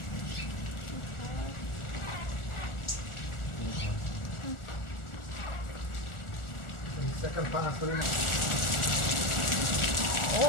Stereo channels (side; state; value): right; late; 1.4 ms